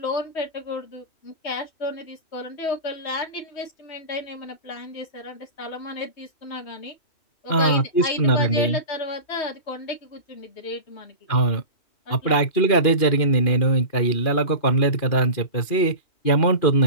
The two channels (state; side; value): late; right; 2.4 ms